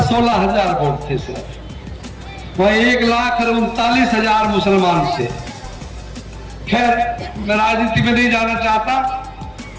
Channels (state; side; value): identical; both; correlation 1.00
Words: हजार वोट थे सिर्फ, वह 1,39,000 मुसलमान थे। खैर मैं राजनीति में नहीं जाना चाहता,